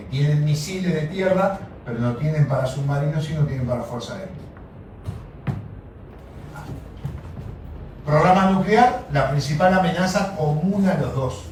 tienen misiles de tierra, pero no tienen para submarinos y no tienen para fuerza aérea. Programa nuclear, la principal amenaza común a los dos.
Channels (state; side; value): identical; both; correlation 1.00